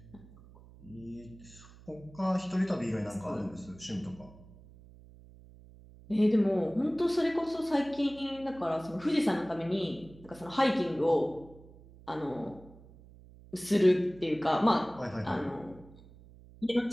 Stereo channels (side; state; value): right; noise; hum, 21 dB below the sound